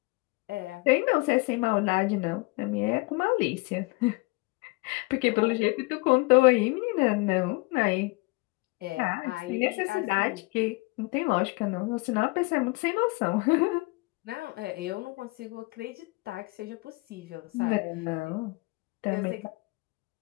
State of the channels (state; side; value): quieter; right; 25.5 dB